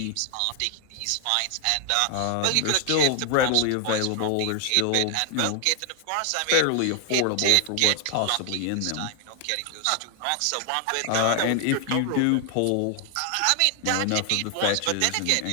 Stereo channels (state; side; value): different; both; correlation 0.00